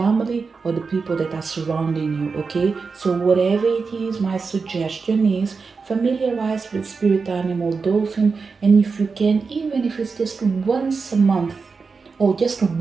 or the people that are surrounding you, okay? So whatever it is, my suggestion is familiarize with spirit animal dolphin, and if you can, even if it's just once a month or just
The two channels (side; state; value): left; quieter; 4.8 dB